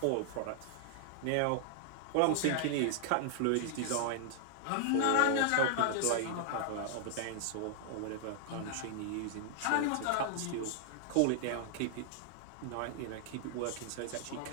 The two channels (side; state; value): both; different; correlation 0.00